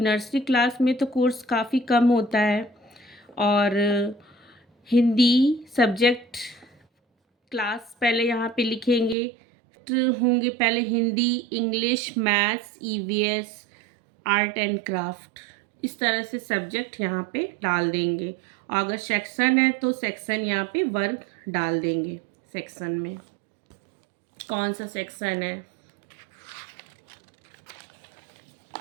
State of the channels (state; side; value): drops out; left; at 9.2 s